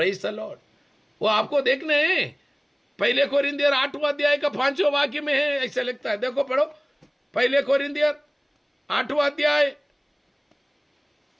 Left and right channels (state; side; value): identical; both; correlation 1.00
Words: the Lord. वो आपको देखने हैं, पहले कोरिन्थियर 8वां अध्याय का 5वां वाक्य में है, ऐसा लिखता है, देखो पढ़ो, पहले कोरिन्थियर 8वां अध्याय